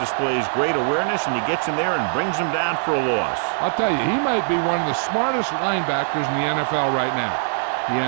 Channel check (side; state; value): left; silent; digital silence